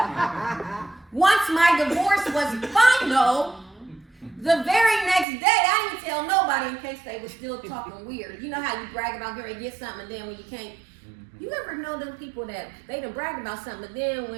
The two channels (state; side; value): drops out; left; at 5.2 s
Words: once my divorce was final, the very next day, I didn't tell nobody in case they were still talking weird. You know how you brag about getting get something and then when you can't. You ever know them people that they done bragged about something, but then